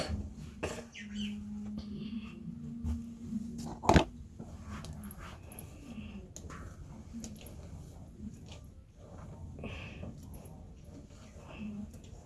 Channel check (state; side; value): identical; both; correlation 1.00